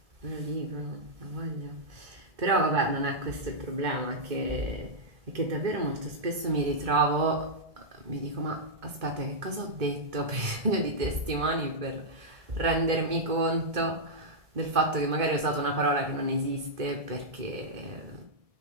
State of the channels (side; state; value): left; late; 1.7 ms